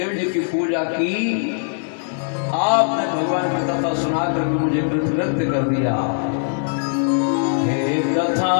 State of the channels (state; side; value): silent; right; digital silence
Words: जी की पूजा की, आपने भगवान की कथा सुना करके मुझे कृतकृत्य कर दिया। हे कथा